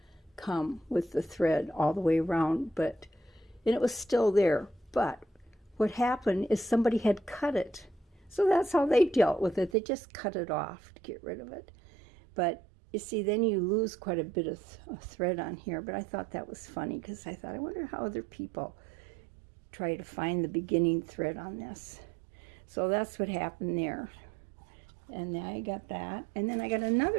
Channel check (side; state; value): left; drops out; at 9.8 s